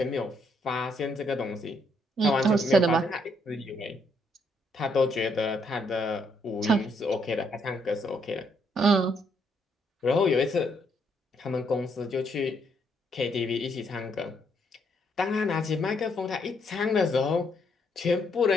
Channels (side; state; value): both; normal; correlation 0.73